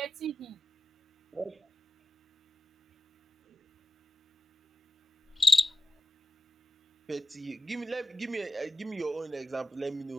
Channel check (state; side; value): normal; both; correlation 0.95